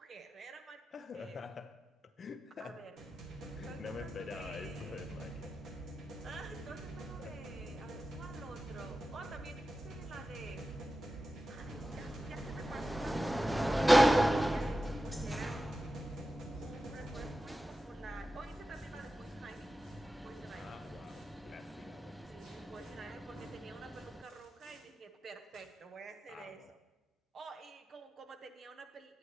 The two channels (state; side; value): normal; both; correlation 0.93